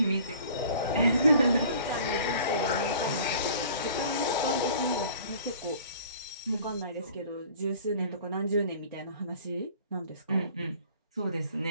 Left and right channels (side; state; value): both; inverted; correlation -0.49